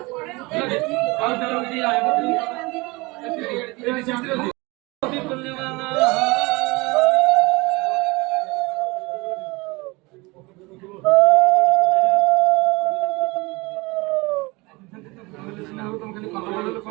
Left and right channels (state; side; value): quieter; left; 24.5 dB